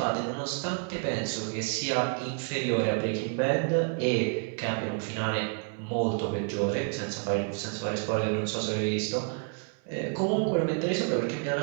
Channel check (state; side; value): quieter; left; 39.5 dB